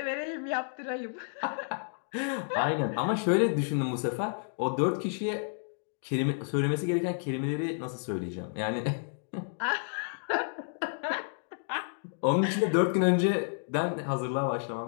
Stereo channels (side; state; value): right; silent; digital silence